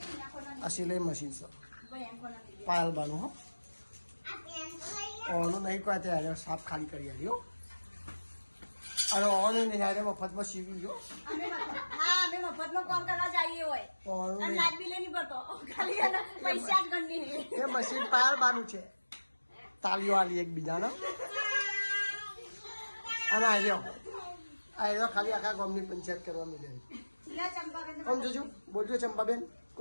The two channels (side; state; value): both; inverted; correlation -1.00